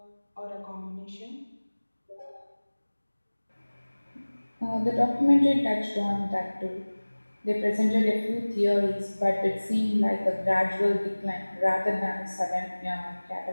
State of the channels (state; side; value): inverted; both; correlation -1.00